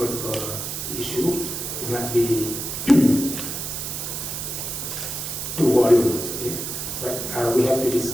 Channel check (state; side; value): noise; right; hiss, 5 dB below the sound